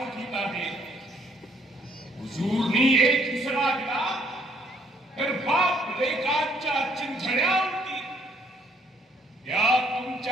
आहे. हुजूरनी एक इसरा दिला तर बाप लेकांच्या चिंधड्या उडतील. या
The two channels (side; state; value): both; normal; correlation 0.66